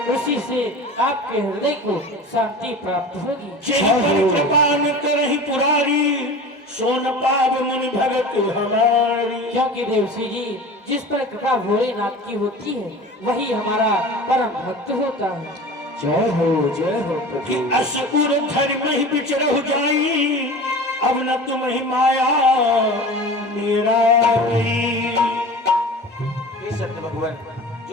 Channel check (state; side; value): normal; both; correlation 0.36